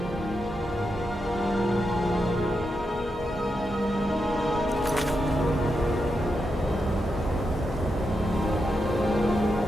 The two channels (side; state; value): both; normal; correlation 0.85